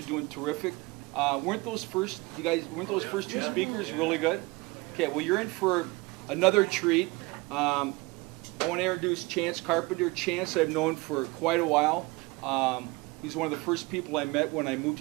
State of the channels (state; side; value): quieter; left; 23.8 dB